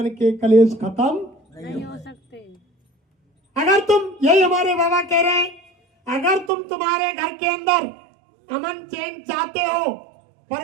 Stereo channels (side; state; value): left; drops out; at 6.5 s